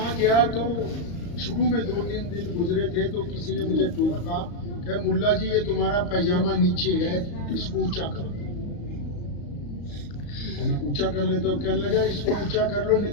گیا تو شروع میں 2-3 دن گزرے تھے تو کسی نے مجھے ٹوکا کہ ملا جی یہ تمہارا پائجامہ نیچے ہے، اس کو اونچا کرو. میں اونچا کر لیتا ہوں، کہنے لگا اس کو اونچا کر لو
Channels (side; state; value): right; late; 35 ms